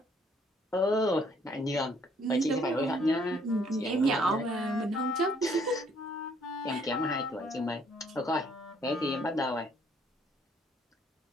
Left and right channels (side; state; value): both; normal; correlation 0.64